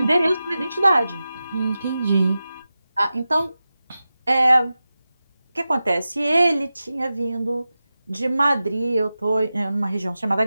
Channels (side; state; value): both; inverted; correlation -0.94